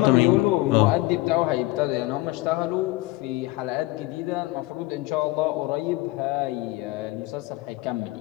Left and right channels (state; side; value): quieter; right; 19.9 dB